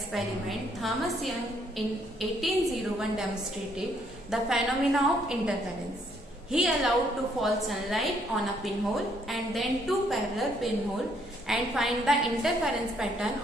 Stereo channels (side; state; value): both; normal; correlation 0.69